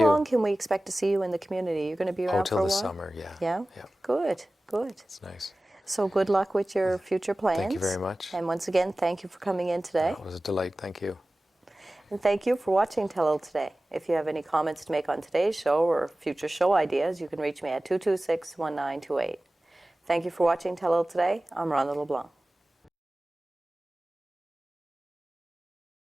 long can we expect to see you in the community? You're going to be around Till for a the while? summer, yeah. Yeah? Yeah. Good. It's nice. So good luck with your future plans. Thank you very much. And once again, thank you for coming in today. It was a delight. Thank you. And thank you for watching Telile today. If you have any comments to make on today's show or future show ideas, you can reach me at 226-1928. Thank you for watching Telile today. I'm Rhonda LeBlanc.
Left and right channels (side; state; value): both; normal; correlation 0.97